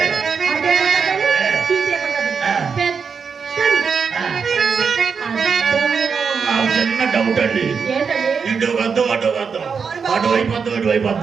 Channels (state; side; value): quieter; left; 5.9 dB